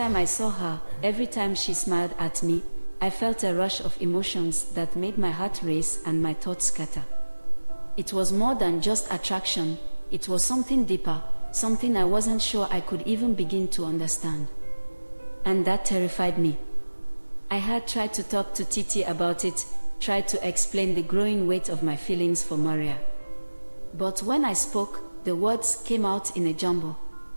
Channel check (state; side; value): inverted; both; correlation -1.00